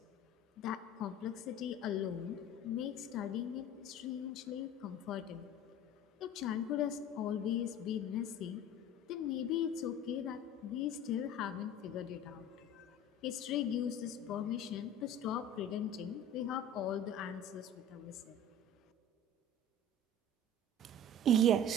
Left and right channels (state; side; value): normal; both; correlation 0.40